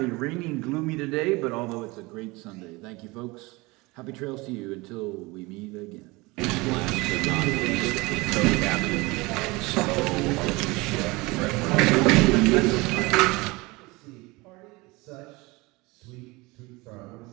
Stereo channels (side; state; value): left; quieter; 23.5 dB